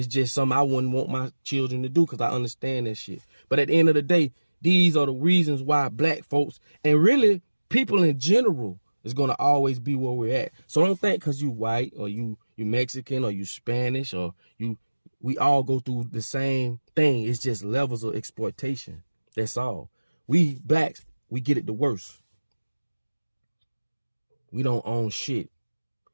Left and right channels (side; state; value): both; inverted; correlation -1.00